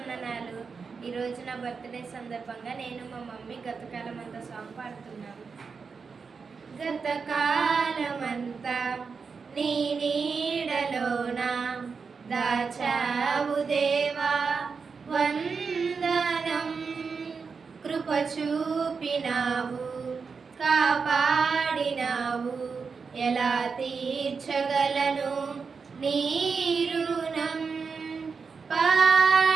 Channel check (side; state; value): left; quieter; 5.3 dB